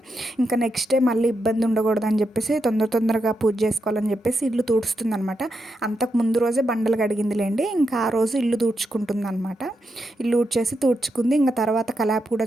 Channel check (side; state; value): both; normal; correlation 0.84